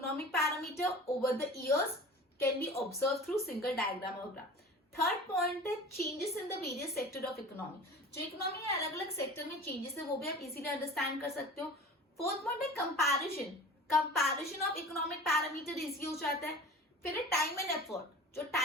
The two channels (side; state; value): both; normal; correlation 0.39